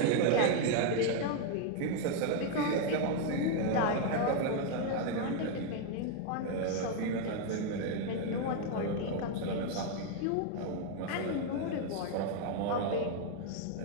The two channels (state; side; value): different; both; correlation 0.01